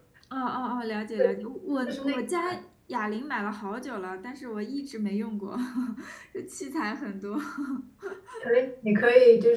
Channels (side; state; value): both; identical; correlation 1.00